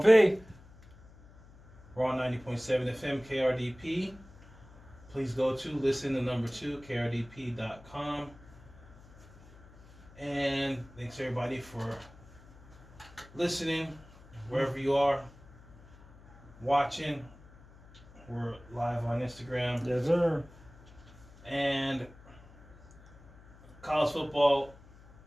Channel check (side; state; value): left; noise; hum, 23 dB below the sound